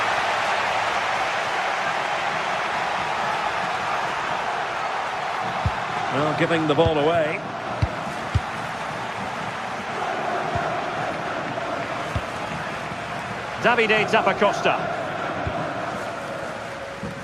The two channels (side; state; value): both; identical; correlation 1.00